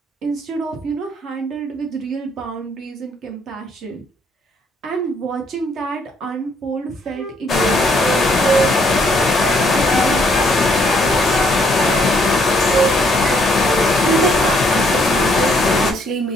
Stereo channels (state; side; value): normal; both; correlation 0.68